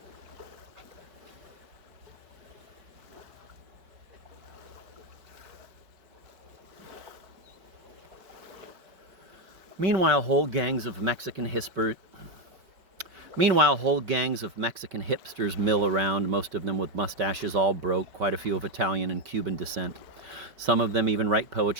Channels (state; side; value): late; left; 5.4 ms